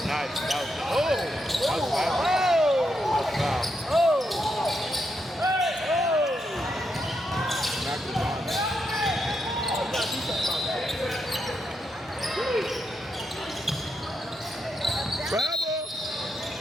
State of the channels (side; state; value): both; normal; correlation 0.82